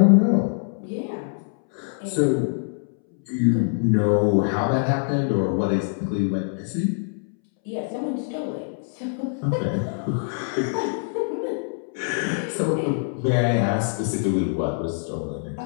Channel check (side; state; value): right; silent; 62 dB below the other